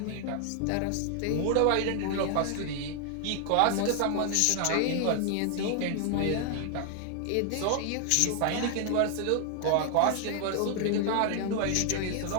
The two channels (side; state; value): both; different; correlation 0.00